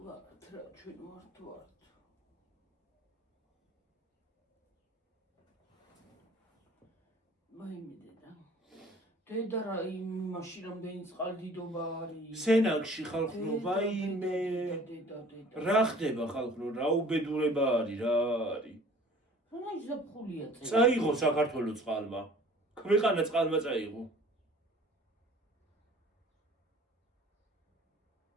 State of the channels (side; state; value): both; normal; correlation 0.50